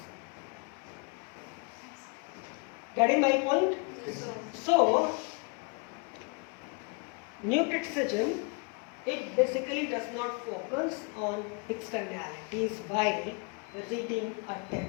Getting my point? So, new criticism, it basically does not focus on externalities while reading a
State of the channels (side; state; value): right; quieter; 33.5 dB